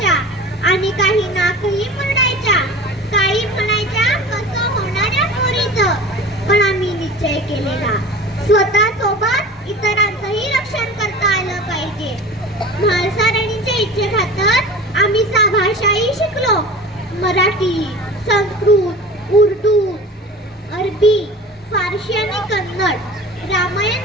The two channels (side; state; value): both; normal; correlation 0.37